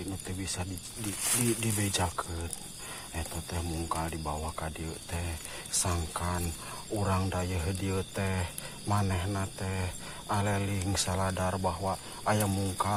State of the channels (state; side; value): identical; both; correlation 1.00